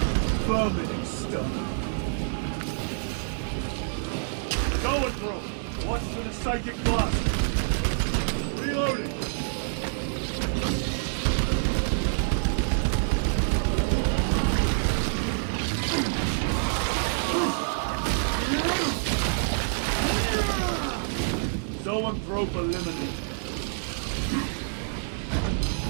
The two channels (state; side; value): silent; left; digital silence